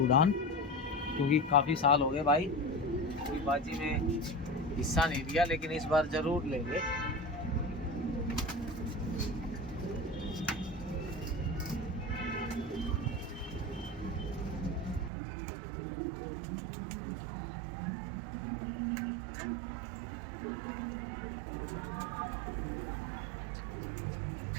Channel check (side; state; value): left; drops out; at 15.1 s